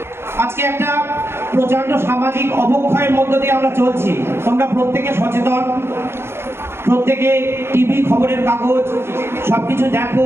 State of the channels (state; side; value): late; left; 0.12 ms